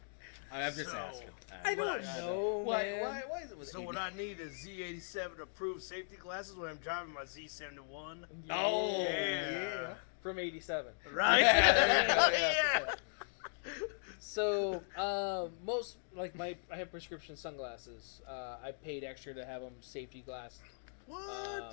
I'm just So, asking. I don't Why- know, Why man. is it with So 80? what I need is Z87 approved safety glasses when I'm driving my Z71. Oh, Yeah. From 87. Right? Yeah. So, most, like, I have prescription sunglasses. I paid extra to have them safety glass. What? Oh,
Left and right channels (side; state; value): right; silent; digital silence